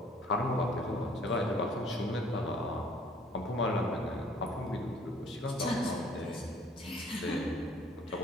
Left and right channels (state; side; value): normal; both; correlation 0.56